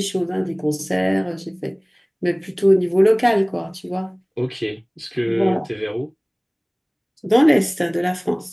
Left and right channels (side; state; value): both; identical; correlation 1.00